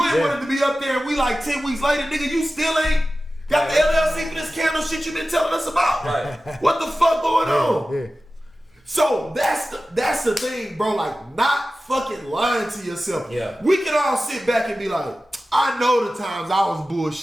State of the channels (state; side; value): normal; both; correlation 0.95